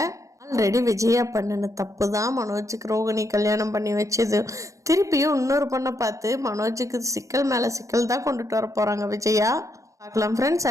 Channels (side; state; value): left; late; 0.15 ms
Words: ஆல்ரெடி விஜயா பண்ணின தப்பு தான் மனோஜுக்கு ரோகிணி கல்யாணம் பண்ணி வச்சது. திருப்பியும் இன்னொரு பொண்ணை பார்த்து மனோஜுக்கு சிக்கல் மேலே சிக்கல் தான் கொண்டுட்டு வர போகிறாங்க விஜயா. பார்க்கலாம் ஃப்ரெண்ட்ஸ்,